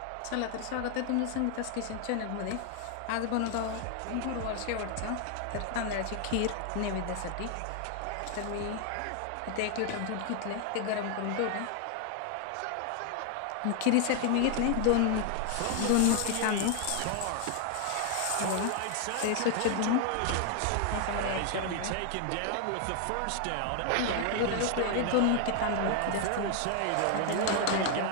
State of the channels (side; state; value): both; different; correlation 0.00